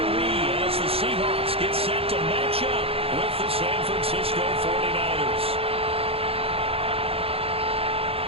we, as the Seahawks get set to match up with the San Francisco 49ers.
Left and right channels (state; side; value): late; left; 0.28 ms